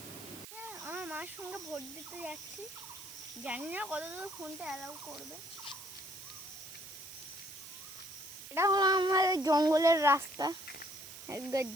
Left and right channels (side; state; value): right; noise; hiss, 13 dB below the sound